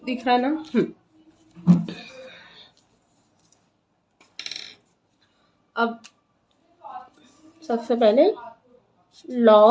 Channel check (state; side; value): identical; both; correlation 1.00